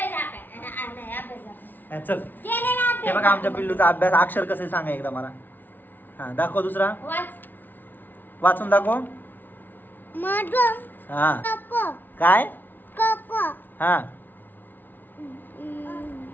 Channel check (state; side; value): late; right; 0.089 ms